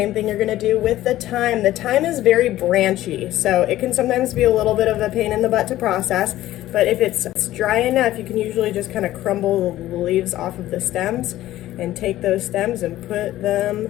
thing you're going to do with the thyme. The thyme is very branchy, so it can sometimes be a little bit of a pain in the butt to process, but if it's dry enough, you can usually just kind of crumble the leaves off of the stems and take those stems and put them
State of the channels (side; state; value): right; quieter; 14.7 dB